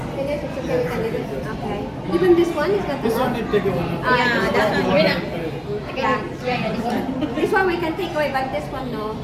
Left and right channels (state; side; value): identical; both; correlation 1.00